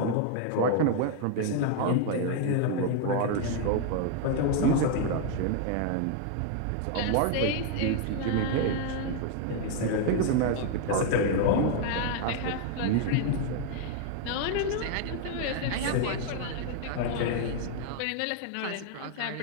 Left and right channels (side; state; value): both; different; correlation 0.00